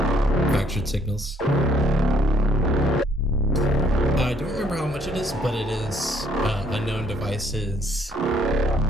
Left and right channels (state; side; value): normal; both; correlation 0.65